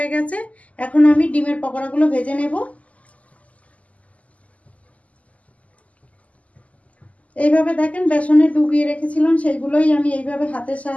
গেছে। এখন আমি ডিমের পকোড়াগুলো ভেজে নেব। এইভাবে দেখেন বেসনে ডুবিয়ে রেখেছিলাম সেইগুলোই আমি এইভাবে হাতের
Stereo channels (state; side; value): late; right; 0.069 ms